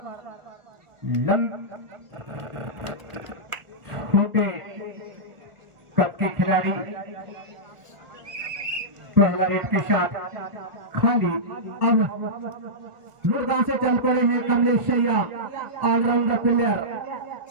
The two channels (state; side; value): late; left; 1.4 ms